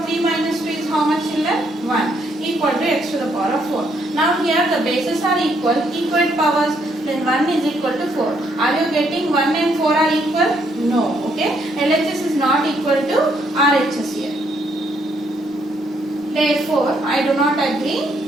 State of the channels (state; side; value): normal; both; correlation 0.72